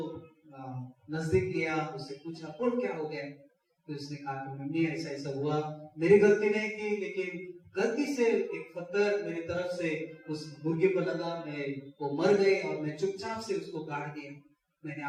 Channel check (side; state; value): both; identical; correlation 1.00